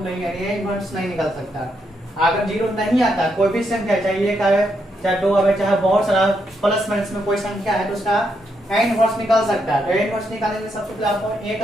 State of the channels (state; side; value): normal; both; correlation 0.79